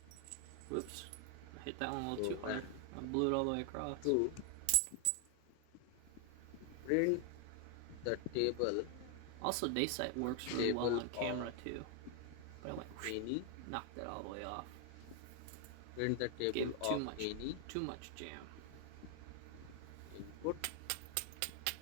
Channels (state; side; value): different; both; correlation 0.00